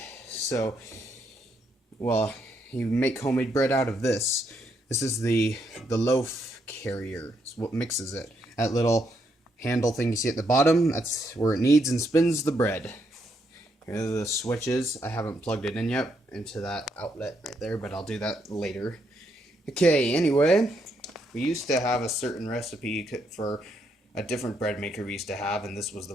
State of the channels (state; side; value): normal; both; correlation 0.76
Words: So, well, you make homemade bread out of this. This is the loaf carrier. It's what mixes it. That little handle thing you see at the bottom, that's where it kneads and spins the bread. Here are the switches. I haven't plugged it in yet into that outlet right there, but I'll do that later. Okay, anyway, we used to have a certain recipe for a different bread maker we used to have, and this was